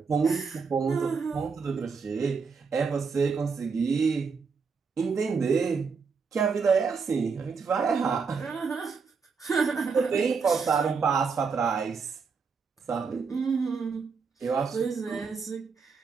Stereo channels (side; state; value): left; quieter; 5.3 dB